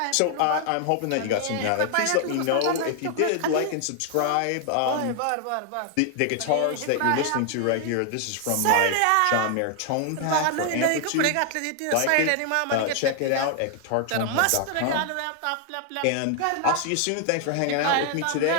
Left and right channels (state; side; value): different; both; correlation 0.00